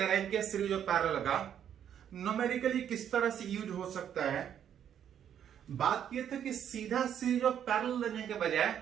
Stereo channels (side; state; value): left; quieter; 9.4 dB